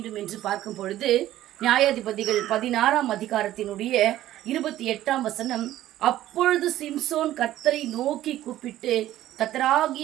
என்று பார்க்கும் பொழுது, நியாயாதிபதிகள் 16ஆம் அதிகாரத்தினுடைய 28ஆம் வசனம், அப்பொழுது சிம்சோன் கர்த்தரை நோக்கி கூப்பிட்டு,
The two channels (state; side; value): quieter; left; 13.7 dB